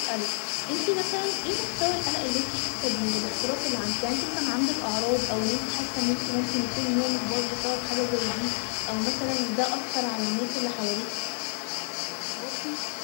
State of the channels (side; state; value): right; silent; 55 dB below the other